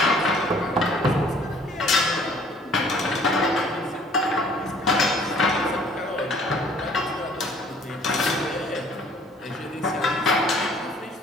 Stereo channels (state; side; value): normal; both; correlation 0.56